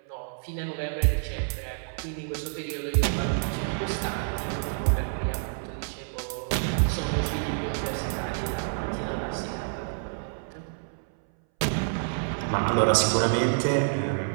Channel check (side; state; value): left; silent; 59 dB below the other